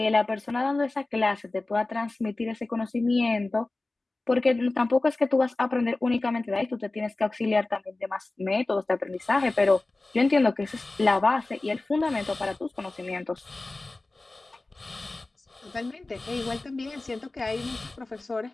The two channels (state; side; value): quieter; right; 3.1 dB